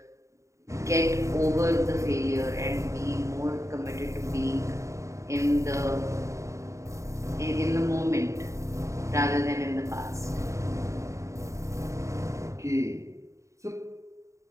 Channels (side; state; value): left; late; 0.15 ms